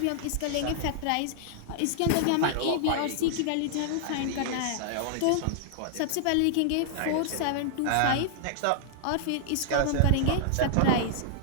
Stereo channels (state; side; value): different; both; correlation -0.01